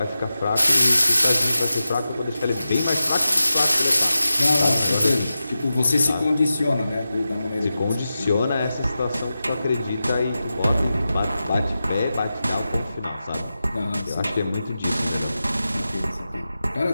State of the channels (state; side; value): inverted; both; correlation -0.92